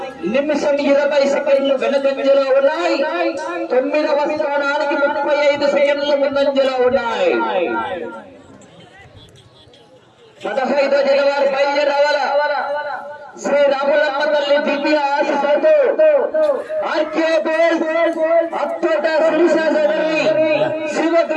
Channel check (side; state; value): both; identical; correlation 1.00